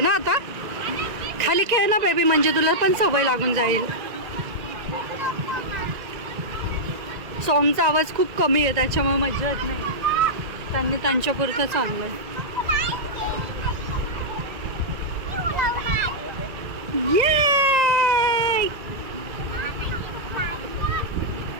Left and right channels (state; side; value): late; left; 1.9 ms